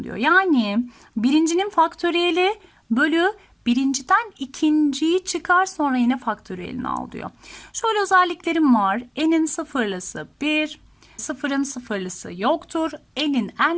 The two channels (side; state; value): both; identical; correlation 1.00